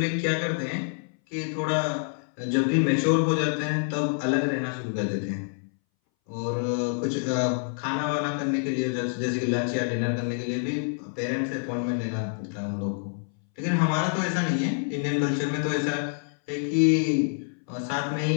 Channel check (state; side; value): silent; right; 60 dB below the other